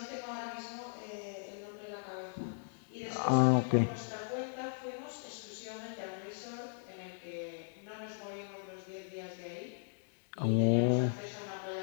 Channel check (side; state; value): right; silent; digital silence